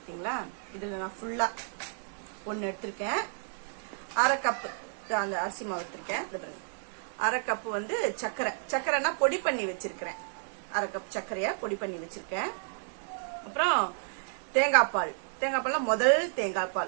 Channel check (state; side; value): silent; left; digital silence